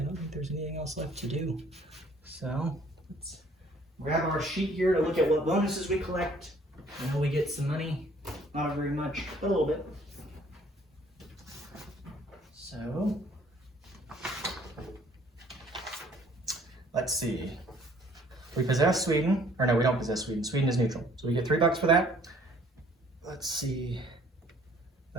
don't think there's anything else left to do. So let's grab our sheet here to look at what bonuses we collect. I know we get some money, not very much, but a little bit. So let's see. We possess Sweden, or no, we don't possess Sweden. Sweden is neutral, so we get $3 for that. Let's see.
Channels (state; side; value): normal; both; correlation 0.58